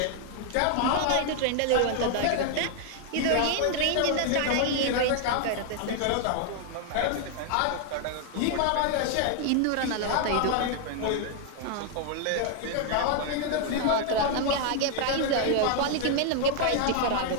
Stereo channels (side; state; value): both; different; correlation 0.00